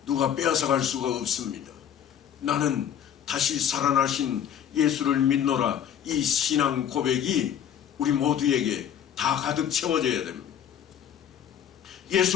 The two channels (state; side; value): quieter; right; 9.3 dB